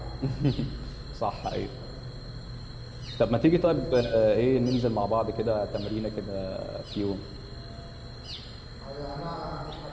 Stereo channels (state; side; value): identical; both; correlation 1.00